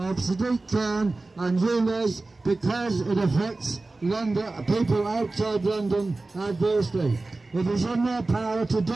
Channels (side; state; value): left; quieter; 3.3 dB